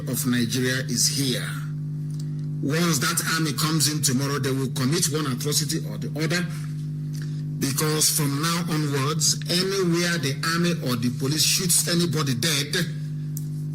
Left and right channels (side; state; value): both; identical; correlation 1.00